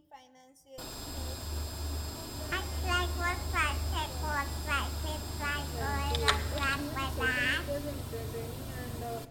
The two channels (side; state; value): both; identical; correlation 1.00